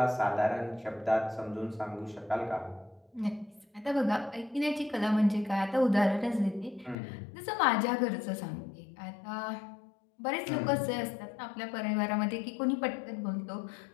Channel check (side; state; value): right; drops out; at 7.0 s